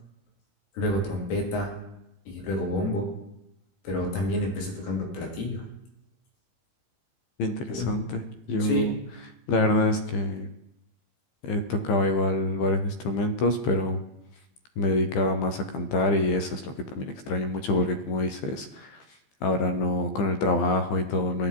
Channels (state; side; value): late; right; 15 ms